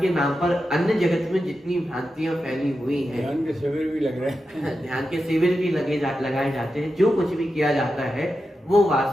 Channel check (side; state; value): both; normal; correlation 0.90